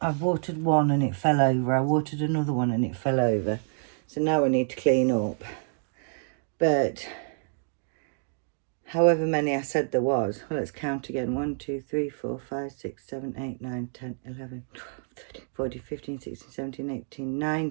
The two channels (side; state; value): left; silent; digital silence